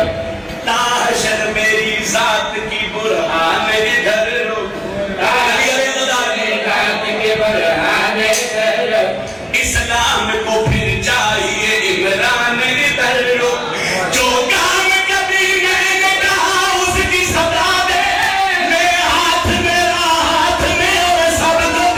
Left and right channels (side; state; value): both; identical; correlation 1.00